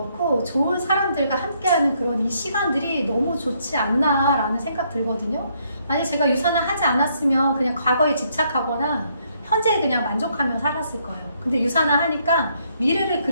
좋은 사람들과 함께하는 그런 이 시간들이 너무 좋지 않나라는 생각 들거든요. 만약 제가 유산화 하지 않았으면 그냥 과거에 집착하거나 현재에 그냥 만족하며 살았을 거예요. 근데 유산화 하니까 미래를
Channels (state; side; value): inverted; both; correlation -0.71